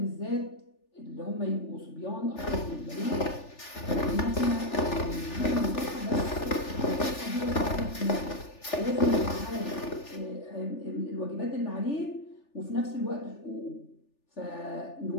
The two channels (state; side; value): late; right; 3.4 ms